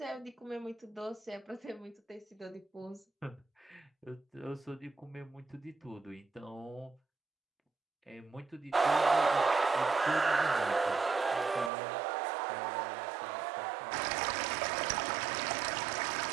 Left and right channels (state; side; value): drops out; left; at 11.7 s